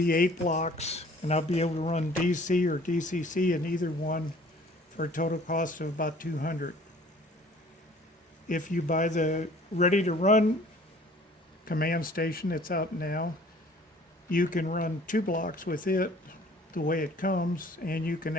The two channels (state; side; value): normal; both; correlation 0.52